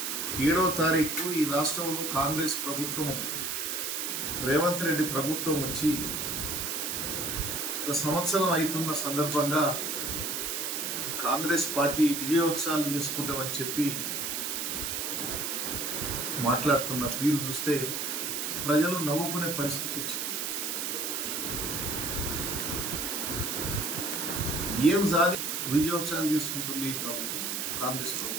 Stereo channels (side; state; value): right; noise; hiss, 2 dB below the sound